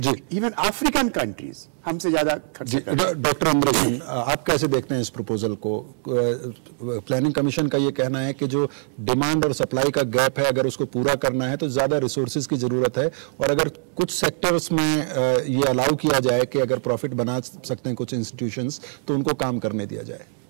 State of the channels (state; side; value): silent; left; digital silence